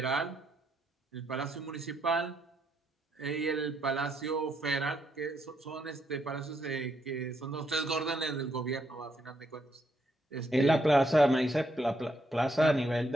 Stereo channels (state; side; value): normal; both; correlation 0.76